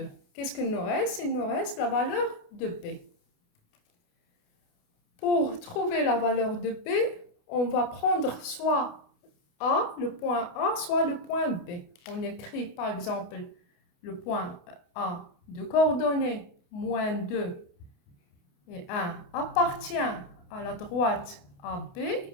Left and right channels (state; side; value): late; right; 28 ms